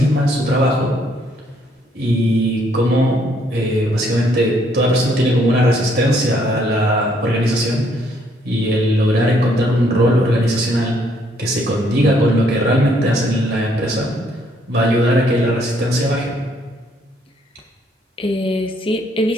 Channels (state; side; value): normal; both; correlation 0.68